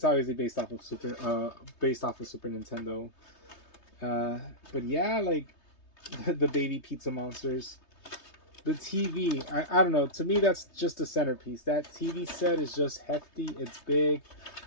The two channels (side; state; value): right; late; 3.2 ms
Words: obviously based off of Super Nintendo. But yeah, like the baby pizza monsters. The TV, I don't know. To me, that's just a centerpiece. That TV set is just hefty. It's big.